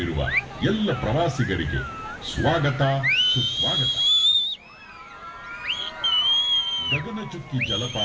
ಎಲ್ಲ ಪ್ರವಾಸಿಗರಿಗೆ ಸ್ವಾಗತ ಸುಸ್ವಾಗತ. ಗಗನಚುಕ್ಕಿ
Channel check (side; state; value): both; identical; correlation 1.00